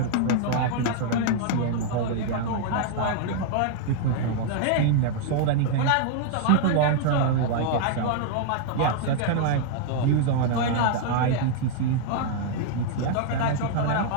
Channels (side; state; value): both; different; correlation 0.00